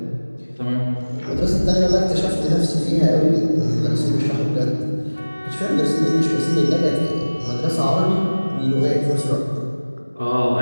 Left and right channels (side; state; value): both; inverted; correlation -1.00